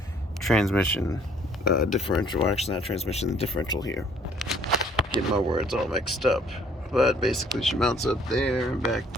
transmission differential. Well, actually not transmission, the differential here. Get my words all mixed up. But basically she mounts up there and back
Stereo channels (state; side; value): normal; both; correlation 0.60